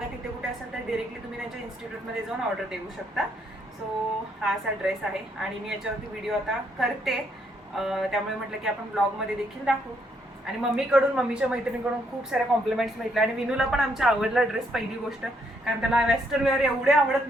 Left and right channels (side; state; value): both; normal; correlation 0.73